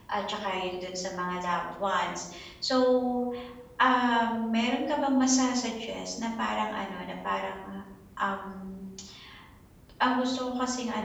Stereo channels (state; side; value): identical; both; correlation 1.00